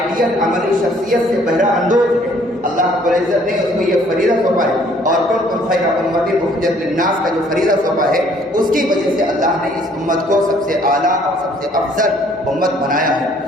عملی شخصیت سے بہرہ اندوز ہے۔ اللہ رب العزت نے اس کو یہ فریضہ سونپا ہے، اور کنتم خیر امۃ اخرجت للناس کا جو فریضہ سونپا ہے اس کی وجہ سے اللہ نے اس امت کو سب سے اعلیٰ اور سب سے افضل امت بنایا ہے۔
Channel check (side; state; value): both; normal; correlation 0.60